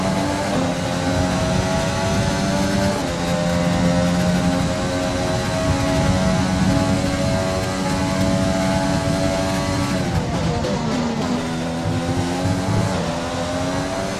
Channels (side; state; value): both; identical; correlation 1.00